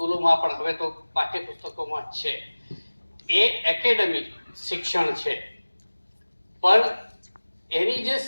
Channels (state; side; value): inverted; both; correlation -1.00